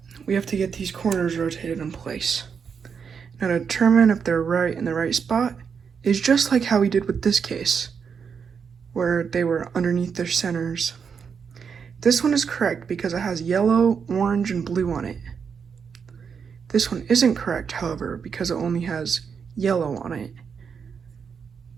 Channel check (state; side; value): quieter; left; 6.4 dB